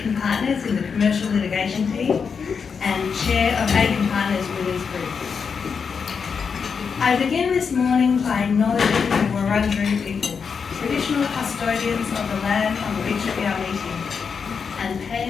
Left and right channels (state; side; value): quieter; right; 6.0 dB